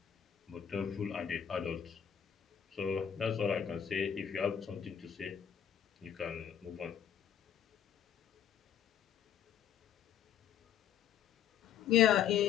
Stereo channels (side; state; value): right; quieter; 9.0 dB